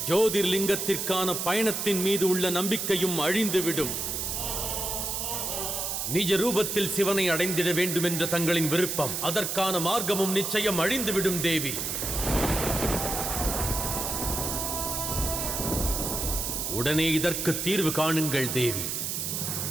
ஜோதிர்லிங்கத்திற்கான பயணத்தின் மீது உள்ள நம்பிக்கையும் அழிந்துவிடும். நிஜ ரூபத்தில் சிவனை அடைந்திட வேண்டும் என்ற தங்களின் விருப்பம், அதற்கான மார்க்கமும் நிச்சயம் அழிந்துவிடும் தேவி. உடனே இதற்கு தீர்வு காணுங்கள் தேவி.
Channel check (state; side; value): noise; right; hiss, 2 dB below the sound